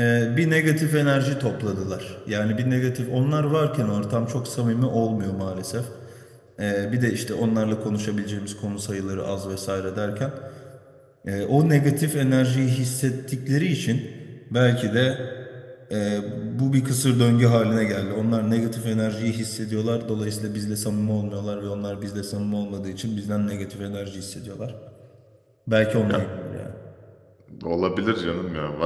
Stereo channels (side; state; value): both; identical; correlation 1.00